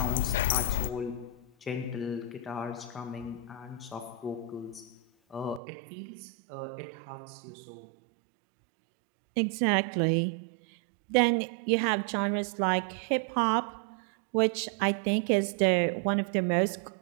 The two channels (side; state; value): left; drops out; at 5.6 s